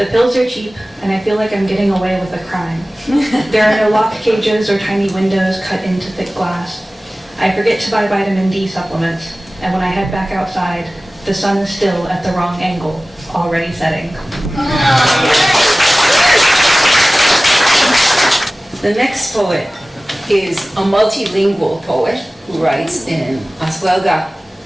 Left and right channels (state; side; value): normal; both; correlation 0.97